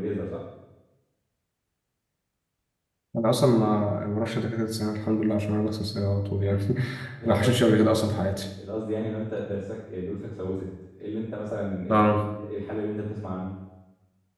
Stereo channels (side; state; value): both; identical; correlation 1.00